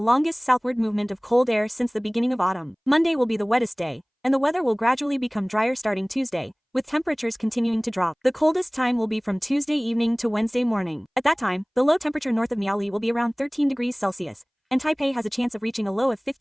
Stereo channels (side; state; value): both; identical; correlation 1.00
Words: southward movement of cold air since the beginning of autumn. Monday will be the wettest day, and the weather will gradually become drier starting Tuesday, with temperatures continuing to drop. The coldest time will be from Tuesday evening to Wednesday morning. At that time, the low temperature north of Miaoli will be around 13 degrees Celsius, and Taipei has a chance of reaching a low of